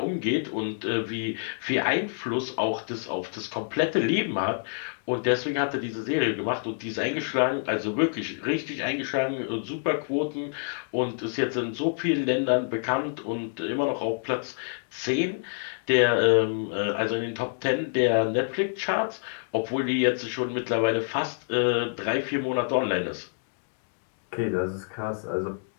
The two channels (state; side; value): silent; right; digital silence